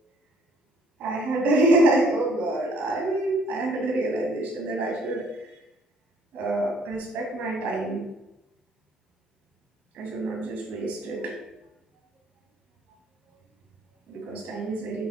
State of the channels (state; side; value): normal; both; correlation 0.61